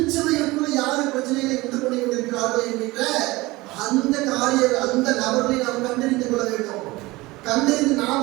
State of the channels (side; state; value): left; quieter; 20.8 dB